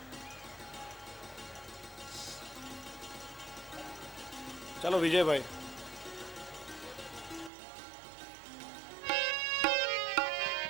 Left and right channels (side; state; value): left; drops out; at 7.5 s